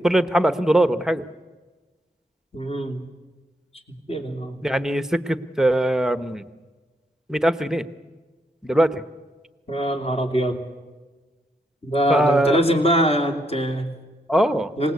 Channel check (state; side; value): normal; both; correlation 0.78